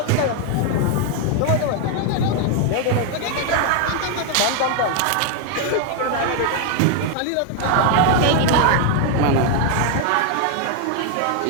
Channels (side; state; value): both; different; correlation 0.01